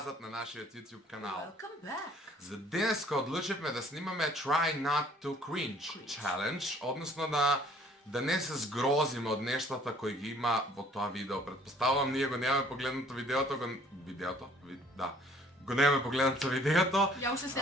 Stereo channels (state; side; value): normal; both; correlation 0.58